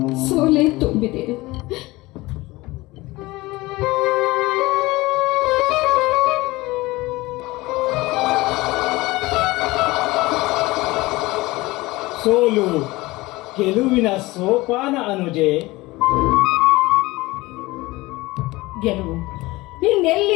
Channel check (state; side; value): quieter; right; 20.6 dB